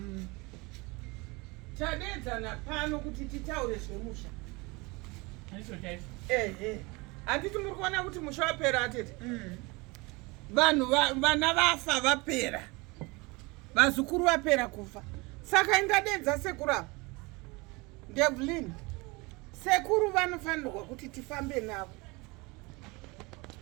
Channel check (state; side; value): quieter; left; 25.5 dB